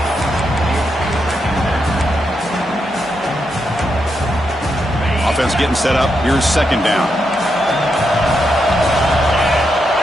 Offense getting set up. Here's second down.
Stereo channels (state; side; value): normal; both; correlation 0.83